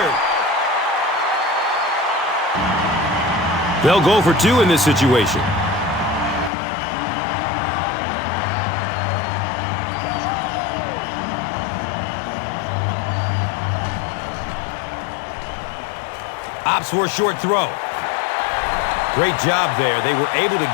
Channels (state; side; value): drops out; right; at 6.5 s